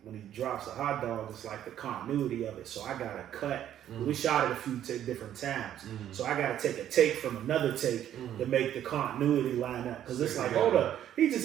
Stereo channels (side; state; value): left; quieter; 11.0 dB